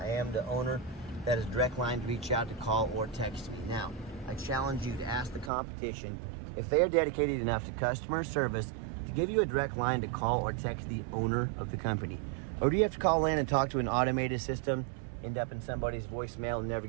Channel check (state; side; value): drops out; left; at 5.5 s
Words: am the owner. That is direct line to reach out to call or text me. Now, I challenge you to ask the competition if they are dedicated enough to customer service to give you a direct line to call or text the owner of the company. Or do you have to call in and talk to an automated system, end up in somebody's voicemail and never